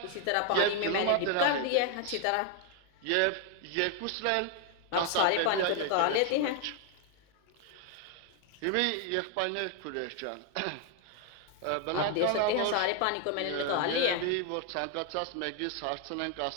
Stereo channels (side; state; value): both; different; correlation 0.00